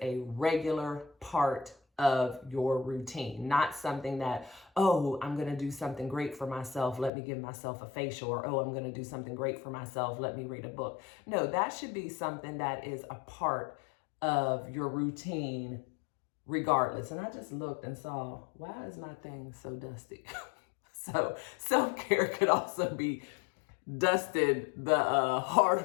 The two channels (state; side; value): drops out; right; at 7.1 s